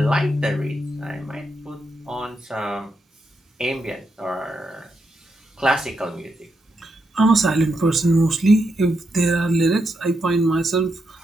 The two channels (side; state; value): both; normal; correlation 0.83